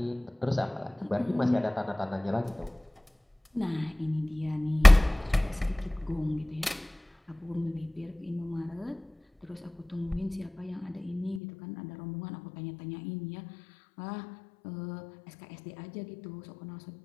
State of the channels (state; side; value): drops out; right; at 11.4 s